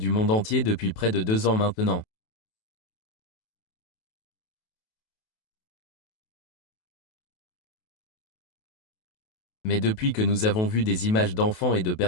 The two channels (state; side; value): late; right; 28 ms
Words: monde entier depuis près de 2 ans maintenant. Mais depuis que nous avons vu des images d'enfants et de